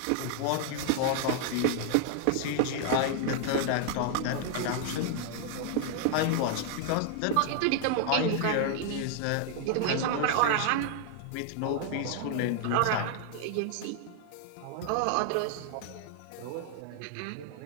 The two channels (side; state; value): both; different; correlation 0.00